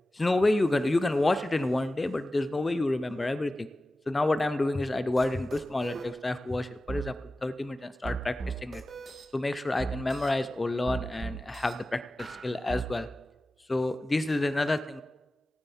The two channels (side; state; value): both; normal; correlation 0.95